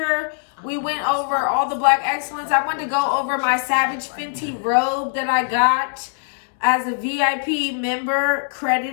We went over all the Black Excellence. I wanted to go over my Savage Fenty robe that I got as a VIP member,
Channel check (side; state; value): right; silent; 65 dB below the other